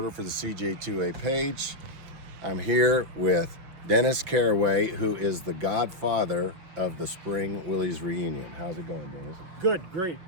for the CJ2A page. I'm here with Dennis Caraway, who is the godfather of the Spring Willys reunion. How's it going, Dennis? Good, great.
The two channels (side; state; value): left; late; 6.3 ms